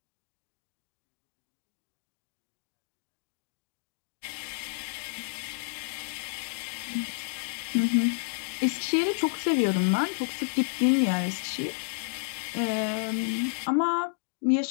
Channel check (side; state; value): right; silent; digital silence